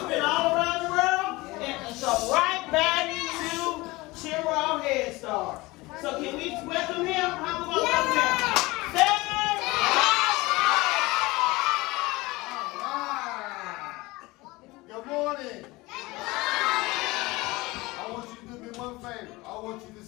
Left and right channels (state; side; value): quieter; right; 21.6 dB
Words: been all around the world and so right back to Chiraw Head Start. So can we welcome him? How we going to welcome him? Good morning. I want you to do me one favor. I want you to